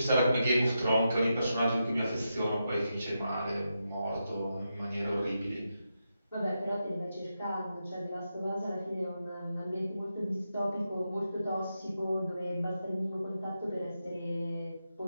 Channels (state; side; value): inverted; both; correlation -0.86